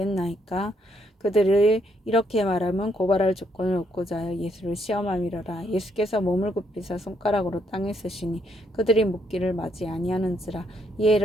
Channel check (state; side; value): normal; both; correlation 0.74